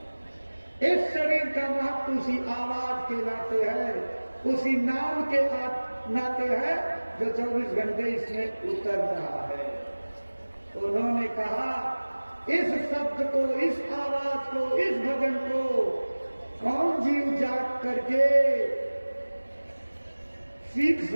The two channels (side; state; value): both; inverted; correlation -1.00